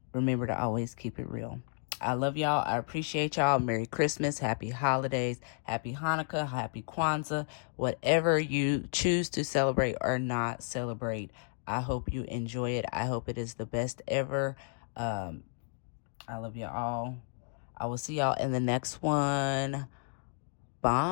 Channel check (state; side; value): silent; right; digital silence